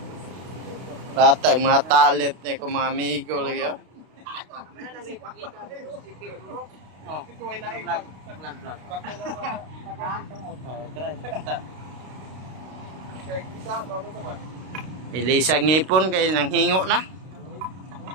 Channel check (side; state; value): left; late; 32 ms